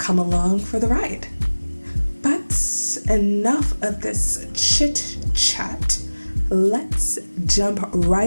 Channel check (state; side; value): inverted; both; correlation -1.00